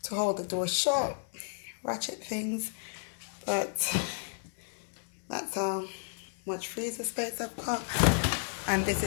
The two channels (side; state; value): right; silent; digital silence